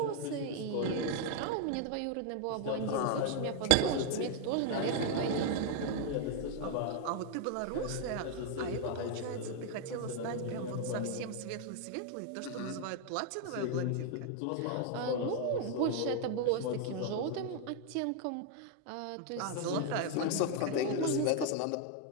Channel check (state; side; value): different; both; correlation 0.00